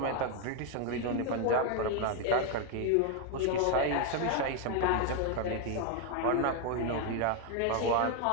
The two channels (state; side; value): different; both; correlation 0.01